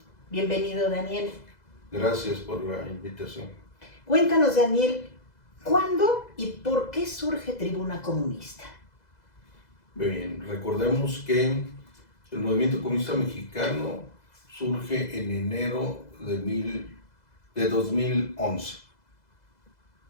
Bienvenido, Daniel. Gracias por la invitación. Cuéntanos, Daniel, ¿cuándo y por qué surge Tribuna Comunista? Bien, recordemos que el movimiento comunista mexicano surge en enero de 2011.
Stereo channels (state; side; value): late; right; 2.0 ms